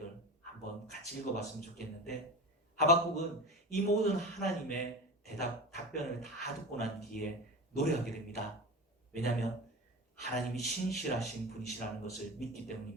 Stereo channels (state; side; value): normal; both; correlation 0.29